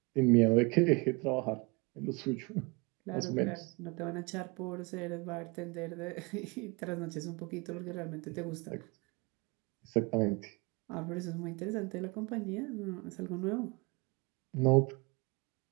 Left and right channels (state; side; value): quieter; left; 27.7 dB